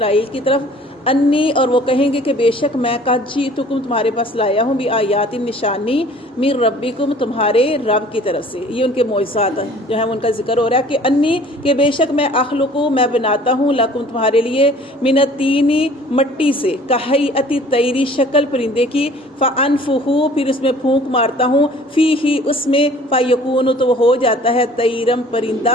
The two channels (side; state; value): both; normal; correlation 0.51